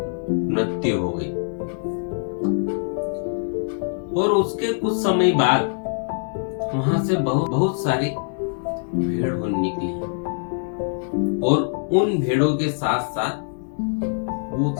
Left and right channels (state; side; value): silent; right; digital silence